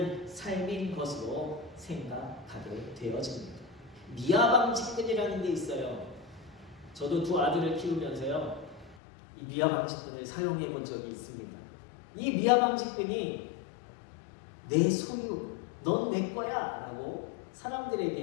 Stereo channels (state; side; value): drops out; right; at 9.0 s